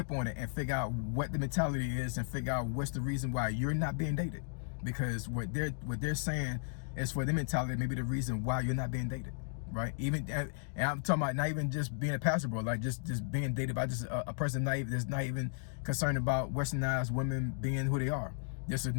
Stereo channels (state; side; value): silent; right; digital silence